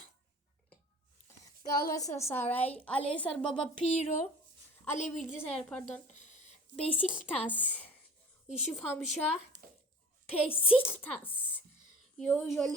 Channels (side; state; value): both; normal; correlation 0.44